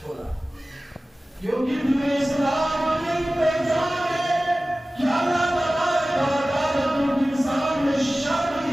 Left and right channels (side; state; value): both; normal; correlation 0.97